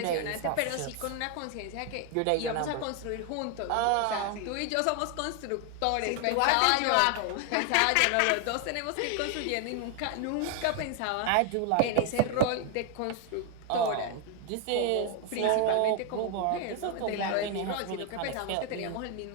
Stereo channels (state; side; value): different; both; correlation 0.00